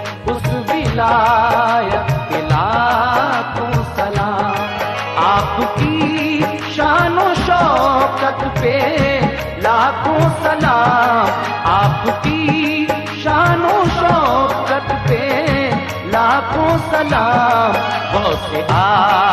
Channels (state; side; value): identical; both; correlation 1.00